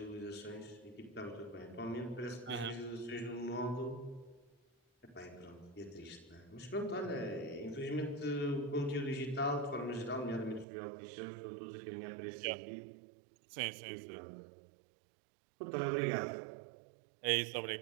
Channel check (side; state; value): left; drops out; at 10.7 s